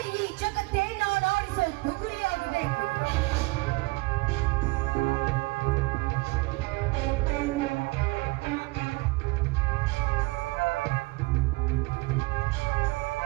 ಈ ಜಗತ್ತೇ ನಾನು ಆಡಿಸೋ ಬುಗುರಿಯಾಗಬೇಕು.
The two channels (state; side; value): quieter; left; 24.0 dB